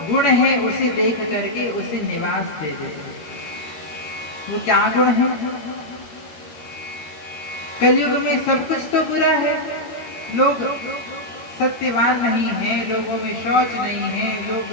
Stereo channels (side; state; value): right; late; 13 ms